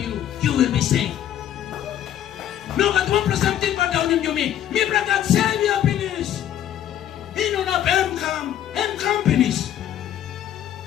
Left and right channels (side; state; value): right; quieter; 11.0 dB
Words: you will be saved. No kat one plus something but down him you me. Me bring that Savior finish. He no na M companies.